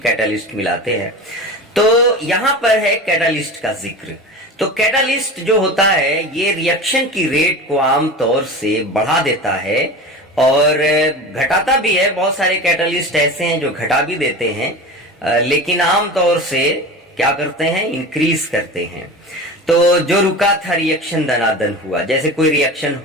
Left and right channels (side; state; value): both; normal; correlation 0.31